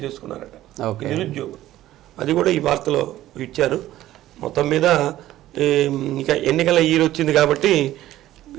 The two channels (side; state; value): left; quieter; 14.3 dB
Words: చేసుకున్నారట ఈ నిరుద్యోగులు. అది కూడా ఈ వార్తలో ఇచ్చారు. మొత్తం మీద ఇంకా ఎన్నికల ఇయర్ వచ్చింది కాబట్టి